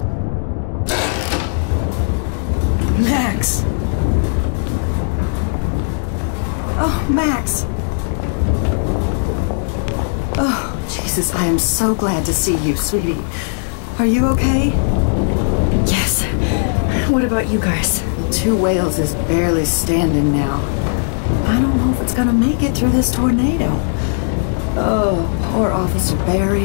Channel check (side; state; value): right; silent; 68 dB below the other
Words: Max! Oh, Max! Oh, Jesus, I am so glad to see you, sweetie. Are you okay? Yes. What about you guys? Two Whales is barely standing now. I don't know if it's gonna make it through this tornado. Oh, poor Officer Barry